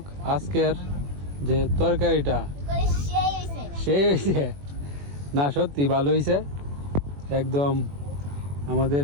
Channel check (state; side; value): late; left; 21 ms